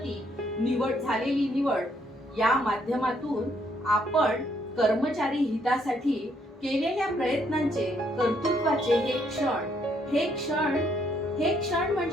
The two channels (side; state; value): both; normal; correlation 0.71